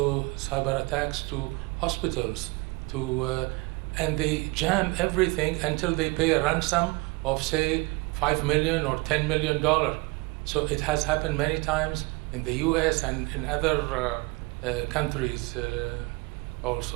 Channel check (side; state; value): left; quieter; 25.3 dB